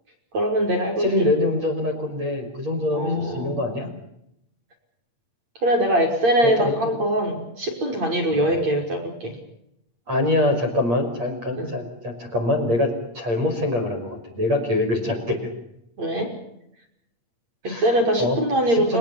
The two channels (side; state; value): left; late; 8.7 ms